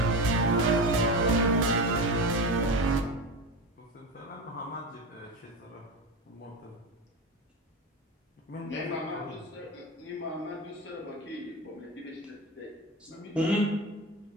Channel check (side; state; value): both; normal; correlation 0.22